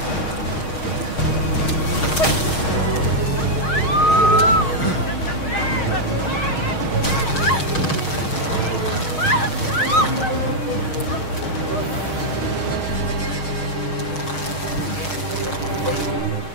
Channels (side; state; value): right; late; 6.4 ms